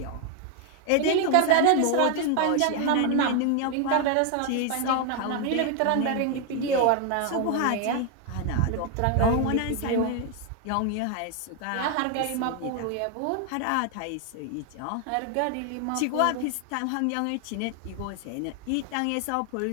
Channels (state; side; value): different; both; correlation 0.00